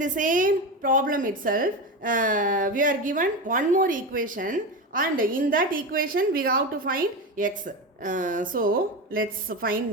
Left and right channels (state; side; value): normal; both; correlation 0.20